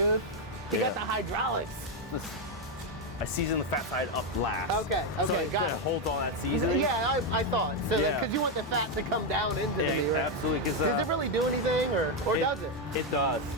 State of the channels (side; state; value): both; normal; correlation 0.04